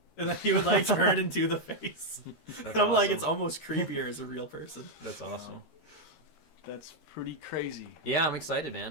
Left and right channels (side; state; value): right; late; 13 ms